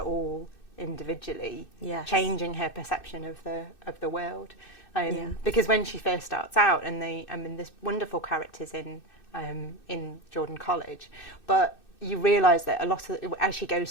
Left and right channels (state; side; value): late; right; 2.6 ms